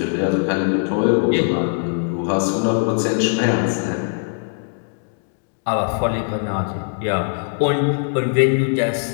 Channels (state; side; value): silent; right; 62 dB below the other